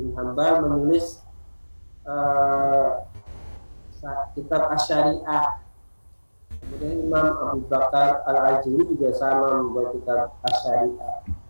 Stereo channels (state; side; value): inverted; both; correlation -1.00